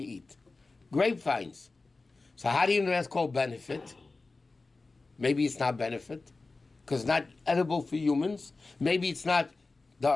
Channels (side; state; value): right; quieter; 3.6 dB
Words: eat? Grapevines. So how do you know that's called benefit? Maybe it's not benefit, because it's not edible for humans. Maybe it's not